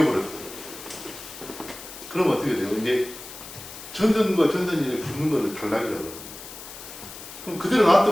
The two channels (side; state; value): left; noise; hiss, 13 dB below the sound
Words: 그러면 어떻게 돼요? 이제 전선과 전선이 붙는 거를 단락이라고 그러거든요. 그럼 그대로